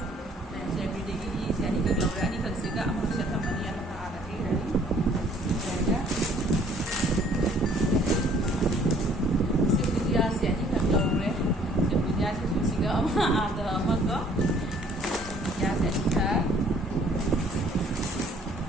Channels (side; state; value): both; normal; correlation 0.58